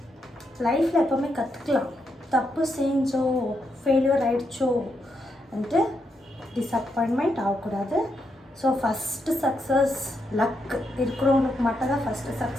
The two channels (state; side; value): normal; both; correlation 0.81